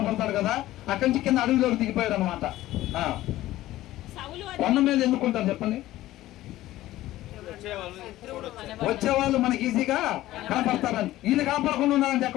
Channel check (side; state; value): right; quieter; 15.6 dB